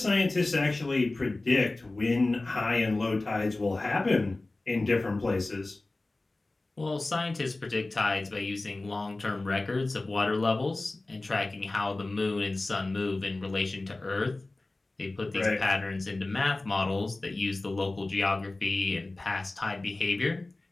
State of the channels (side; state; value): right; quieter; 3.0 dB